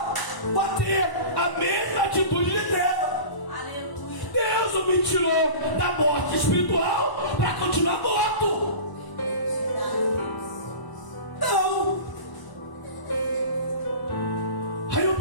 para ter a mesma atitude de treva. Deus não me tirou da morte espiritual para continuar morto. Não. Aí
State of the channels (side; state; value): right; late; 1.0 ms